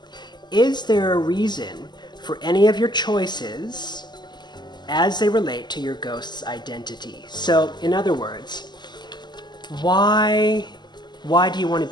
is there a reason for any of your choices as they relate to your ghost's identity? So, in other words, why do you want to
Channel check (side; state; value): right; late; 0.21 ms